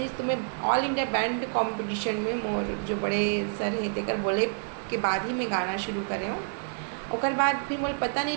तो मैं ऑल इंडिया बैंड कंपटीशन में मोर जो बड़े सर हैं तेकर बोले के बाद ही मैं गाना शुरू करे हूँ। ओकर बाद फिर मोल पता नहीं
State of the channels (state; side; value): silent; left; digital silence